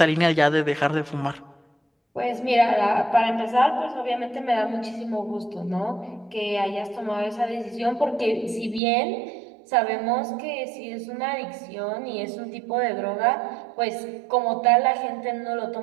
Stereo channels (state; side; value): drops out; left; at 8.8 s